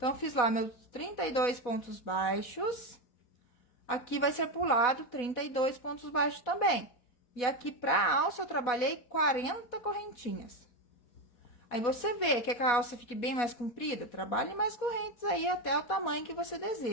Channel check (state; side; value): late; right; 4.1 ms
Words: eu fiz lá meus 32 pontos baixos. Aqui vai ser pulado 32 pontos baixos também. E aqui pra alça eu trabalhei 40 correntinhas. Aí, você vê que a alça fique bem mais comprida, trabalhe mais correntes aí até o tamanho que você